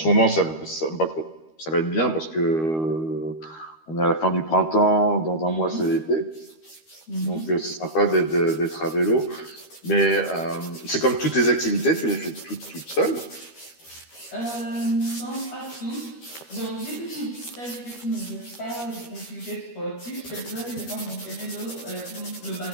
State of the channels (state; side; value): late; right; 13 ms